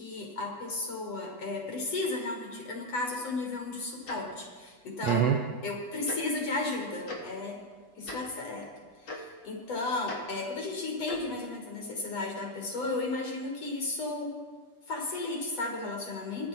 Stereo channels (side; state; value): right; late; 8.2 ms